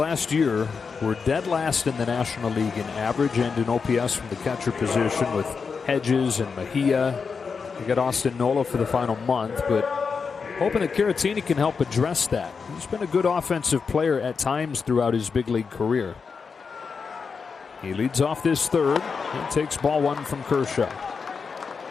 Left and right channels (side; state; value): right; quieter; 5.4 dB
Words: year were dead last in the National League in average and in OPS from the catcher position with Hedges and Mejia. They got Austin Nola for the final month, but hoping that Caratini can help address that. He's been a good offensive player at times throughout his big league career. He leads off this 3rd and takes ball 1 from Kershaw.